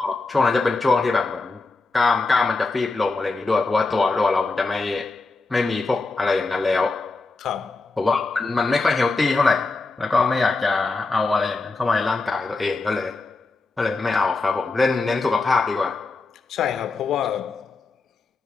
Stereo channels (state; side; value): quieter; right; 3.7 dB